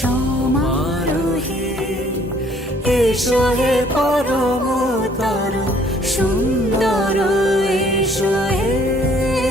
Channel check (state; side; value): normal; both; correlation 0.60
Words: এসো হে পরমতর সুন্দর এসো হে।